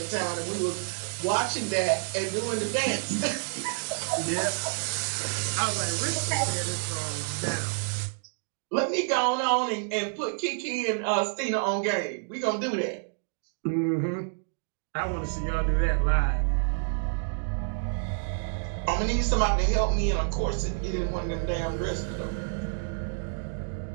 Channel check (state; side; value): silent; left; digital silence